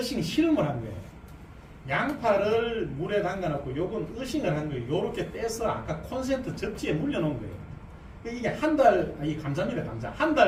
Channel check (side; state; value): both; identical; correlation 1.00